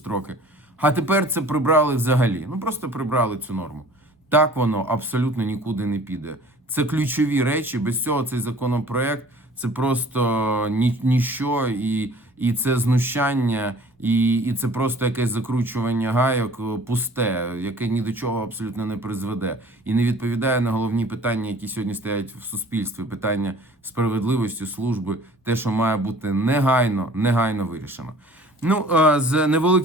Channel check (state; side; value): normal; both; correlation 0.49